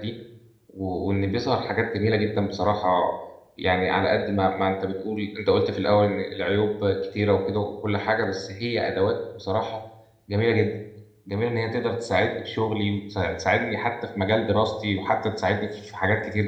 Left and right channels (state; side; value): identical; both; correlation 1.00